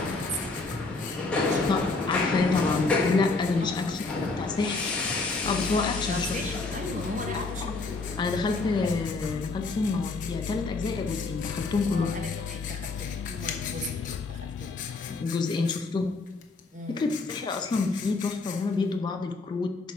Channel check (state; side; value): quieter; right; 3.7 dB